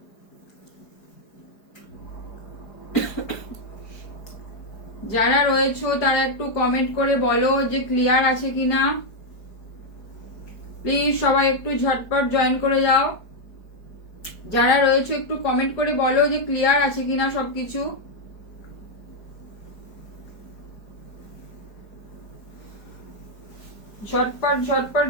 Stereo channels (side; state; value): right; late; 4.7 ms